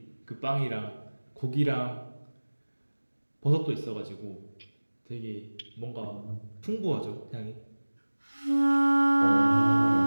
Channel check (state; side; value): inverted; both; correlation -1.00